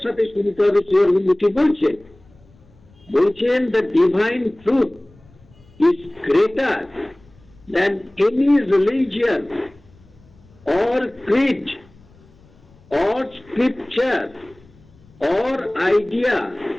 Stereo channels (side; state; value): left; noise; rumble, 28 dB below the sound